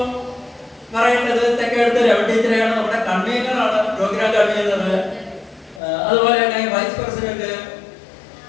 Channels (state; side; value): drops out; right; at 5.8 s